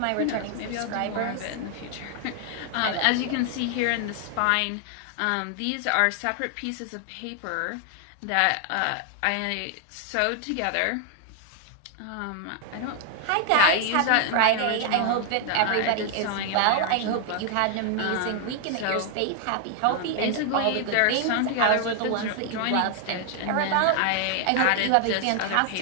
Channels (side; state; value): both; different; correlation 0.00